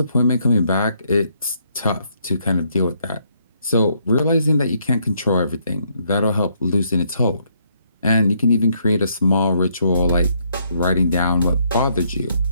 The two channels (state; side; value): inverted; both; correlation -0.72